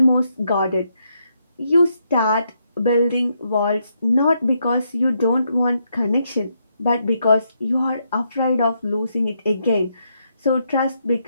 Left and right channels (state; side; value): inverted; both; correlation -0.78